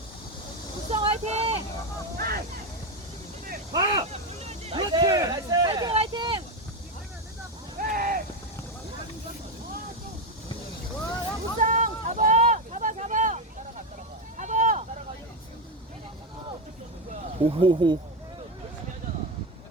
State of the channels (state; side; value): normal; both; correlation 0.11